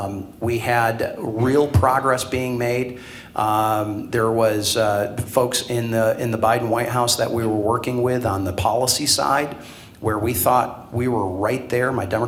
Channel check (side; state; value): both; identical; correlation 1.00